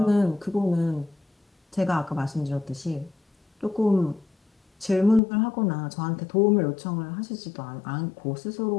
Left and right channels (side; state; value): right; drops out; at 5.2 s